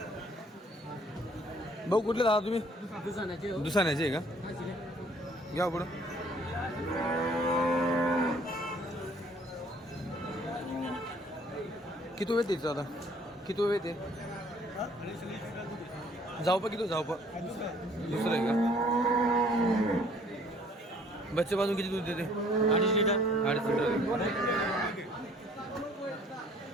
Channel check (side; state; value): both; normal; correlation 0.58